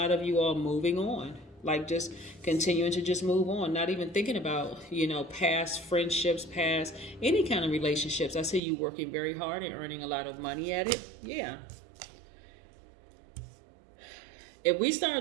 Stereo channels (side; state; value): left; drops out; at 8.6 s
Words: of you all moving on, like just continuing to just move on, not even thinking about, past friendships, past any kind of relationships. I see you working very hard and earning a lot of money at it. Yeah. If we